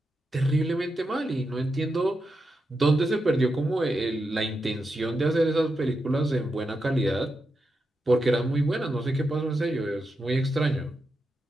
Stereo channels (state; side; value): normal; both; correlation 0.87